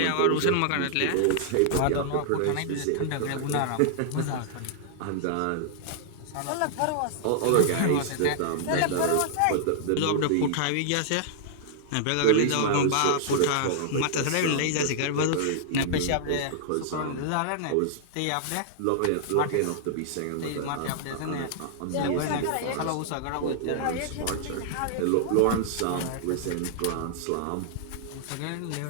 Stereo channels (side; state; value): both; different; correlation -0.01